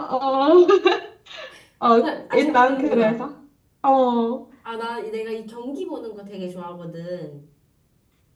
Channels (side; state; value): both; identical; correlation 1.00